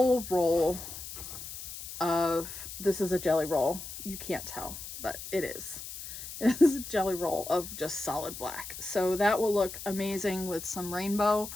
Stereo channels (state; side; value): noise; left; hiss, 10 dB below the sound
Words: roll of, this is a jelly roll. You can't tell, but it is. It is a jelly roll of just solid black. So that will look amazing with some rainbow.